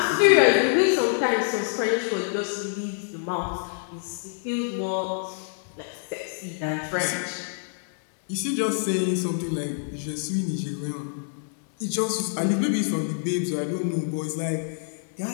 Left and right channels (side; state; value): right; silent; 61 dB below the other